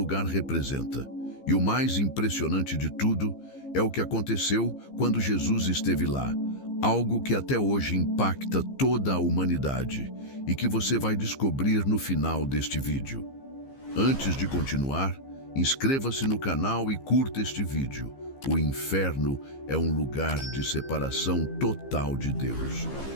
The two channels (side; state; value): right; late; 15 ms